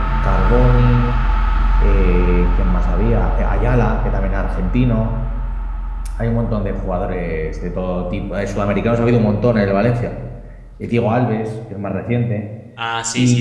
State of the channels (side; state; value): both; identical; correlation 1.00